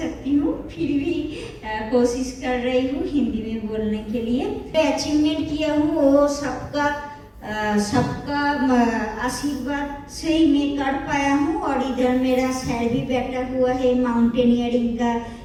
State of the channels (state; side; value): identical; both; correlation 1.00